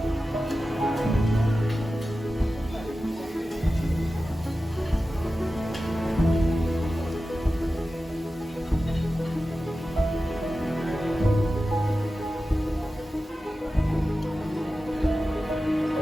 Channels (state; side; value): normal; both; correlation 0.94